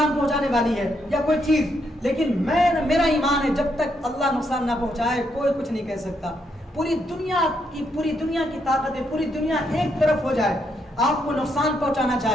پہنچانے والی ہے یا کوئی چیز، لیکن میرا ایمان ہے جب تک اللہ نقصان نہ پہنچائے کوئی کچھ نہیں کہہ سکتا. پوری دنیا کی طاقت ہے، پوری دنیا ایک طرف ہو جائے، آپ کو نقصان پہنچانا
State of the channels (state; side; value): normal; both; correlation 0.77